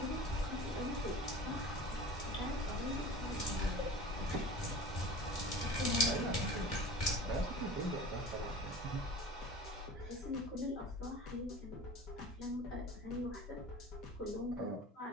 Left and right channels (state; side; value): normal; both; correlation 0.37